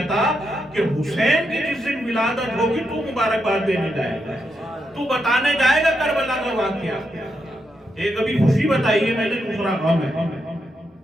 تھا کہ حسین کی جس دن ولادت ہوگی تو مبارکباد دینے جائے گا, تو بتانے جائے گا کربلا کا واقعہ. ایک ابھی خوشی بتائی ہے میں نے, دوسرا غم ہے.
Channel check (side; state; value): both; normal; correlation 0.83